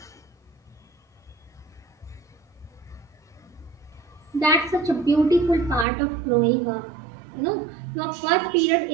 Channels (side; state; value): left; drops out; at 5.9 s